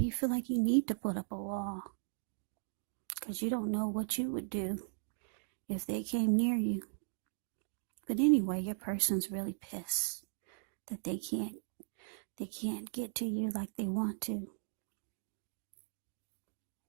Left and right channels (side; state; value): left; silent; digital silence